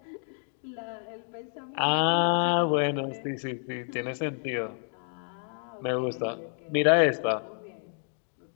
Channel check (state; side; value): silent; right; 56 dB below the other